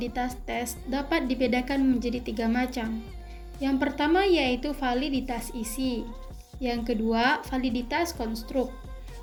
tes dapat dibedakan menjadi 3 macam. Yang pertama yaitu validitas isi. Yang kedua, validitas konstruk.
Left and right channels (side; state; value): both; identical; correlation 1.00